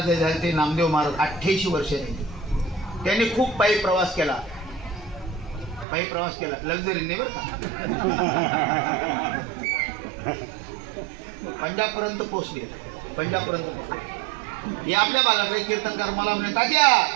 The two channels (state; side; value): drops out; left; at 5.9 s